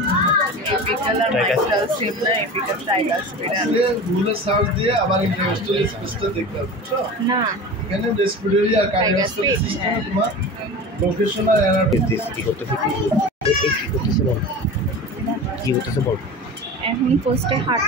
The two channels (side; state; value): both; normal; correlation 0.33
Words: apical আর মাইট্রাল সেম না এপিক্যাল ট্রাইগাস্পিড আসলে রুলার সাউন্ড দিয়ে আবার ইন্টারস্টাল স্পেসটা দেখতে হবে না এখানে রেসপিরেটরি আর কার্ডিওভাস্কুলার সিস্টেমে তোমার লোকেশন আর অ্যানাটমি কি করতেছে বল এখন ফার্স্টে হার্ট